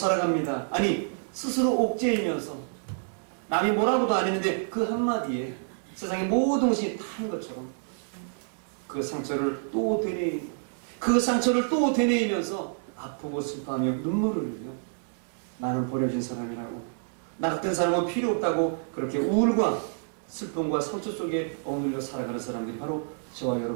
아니 스스로 옥죄이면서 남이 뭐라고도 안 했는데 그 한마디에 세상의 모든 것이 타는 것처럼 그 상처를 또 되뇌이고 그 상처를 또 되뇌이면서 아프고 슬퍼하며 눈물을 흘려 나는 버려진 사람이라고 나 같은 사람은 필요 없다고 그렇게 우울과 슬픔과 상처 속에 억눌려 살아가는 사람들이 바로 저와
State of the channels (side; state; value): left; silent; digital silence